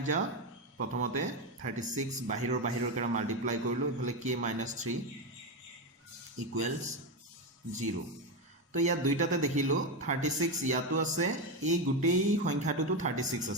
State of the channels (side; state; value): both; normal; correlation 0.12